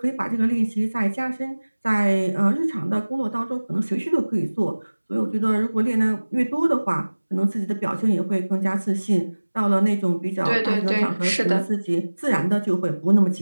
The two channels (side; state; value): both; inverted; correlation -1.00